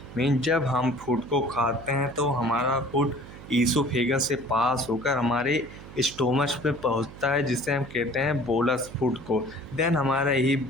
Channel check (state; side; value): noise; right; hum, 16 dB below the sound